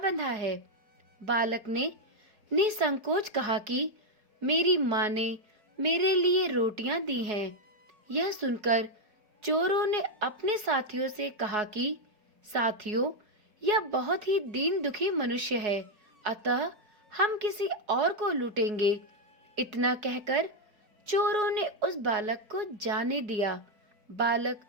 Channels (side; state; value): left; late; 4.7 ms